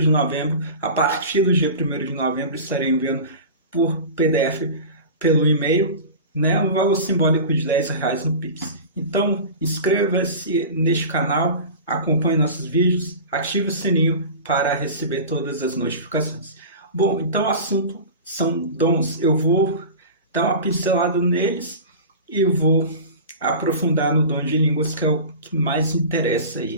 novembro, a partir do dia 1º de novembro, estarei enviando por PDF pelo e-mail, né, um valor simbólico de R$10 no Pix. Então, inscreva-se neste canal, acompanhe nossos vídeos, ative o sininho para receber todas as notificações. Bom, então o assunto são dons. Eu vou dar uma pincelada neles e vou aprofundar no dom de línguas, que é o que mais interessa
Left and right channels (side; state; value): both; inverted; correlation -0.33